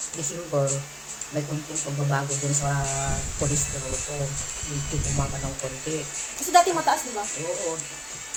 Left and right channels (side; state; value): both; identical; correlation 1.00